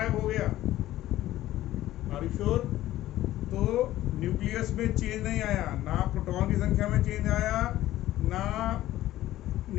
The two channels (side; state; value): right; quieter; 14.7 dB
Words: हो गया। Are you sure? तो न्यूक्लियस में चेंज नहीं आया, ना प्रोटॉन की संख्या में चेंज आया ना